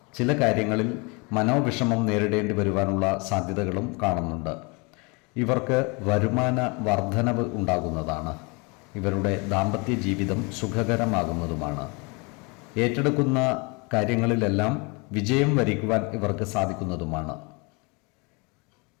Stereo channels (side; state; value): right; quieter; 29.8 dB